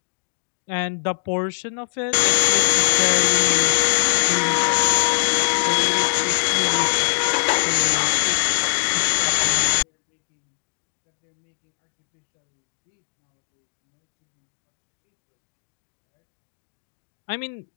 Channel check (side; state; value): right; silent; digital silence